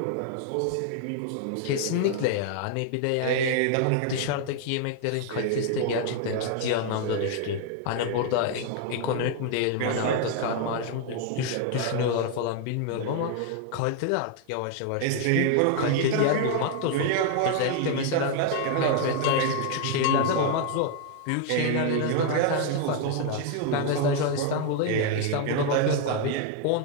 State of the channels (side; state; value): both; different; correlation 0.00